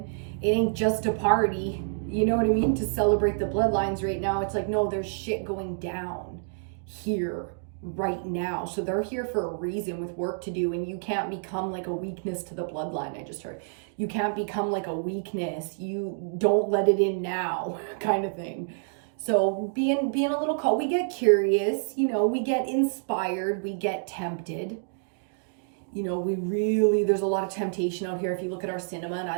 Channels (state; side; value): silent; left; digital silence